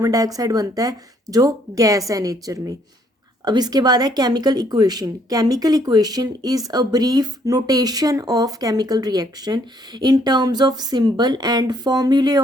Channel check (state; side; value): normal; both; correlation 0.67